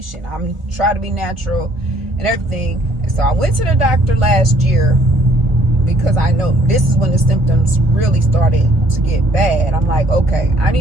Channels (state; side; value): late; left; 1.4 ms